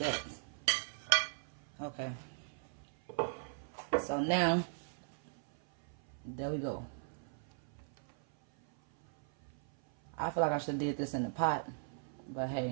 Okay. So now, there we go. I feel like I should have did this in the pot. But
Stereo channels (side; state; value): left; silent; 52 dB below the other